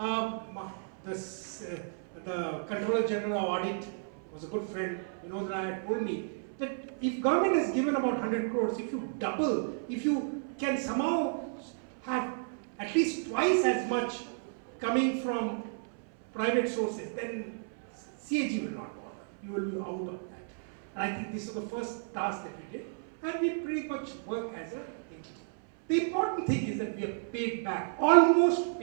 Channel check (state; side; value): silent; left; 56 dB below the other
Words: the Controller General of Audit was a good friend, Vinod told me that if government has given about 100 crores, if you double, if you can somehow have at least twice as much coming from private sources, then CAG will not bother. You will be out of that. And I think this is the first task that we did, and we pretty much work as an entity. The important thing is that we have paid back, almost